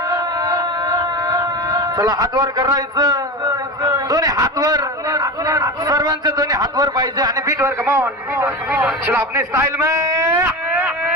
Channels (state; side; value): normal; both; correlation 0.24